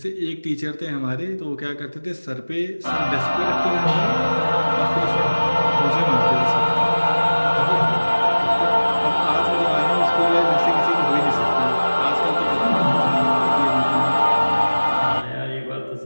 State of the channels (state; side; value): inverted; both; correlation -1.00